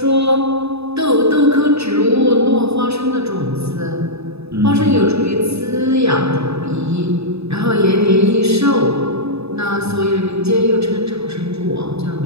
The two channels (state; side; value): late; left; 0.79 ms